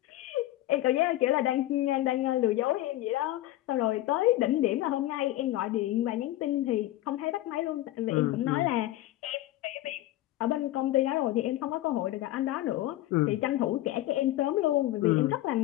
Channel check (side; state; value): right; quieter; 15.2 dB